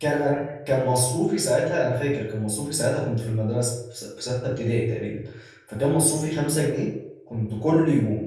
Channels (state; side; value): identical; both; correlation 1.00